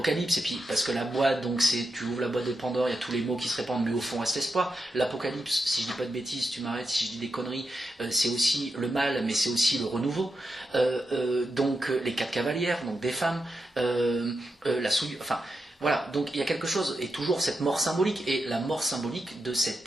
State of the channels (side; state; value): both; normal; correlation 0.87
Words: et puis parce que la boîte, donc tu ouvres la boîte de Pandore, il y a tous les mots qui se répandent, mais au fond reste l'espoir. L'Apocalypse, si je dis pas de bêtises, tu m'arrêtes si je dis des conneries, c'est aussi le mal, mais c'est aussi le renouveau. Donc les 4 cavalières, donc des femmes, la souillure, enfin... Voilà, donc il y a quelque chose, et toujours cette mort symbolique, et la mort symbolique de cet